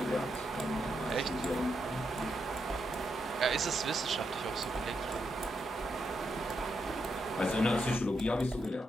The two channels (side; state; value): both; normal; correlation 0.82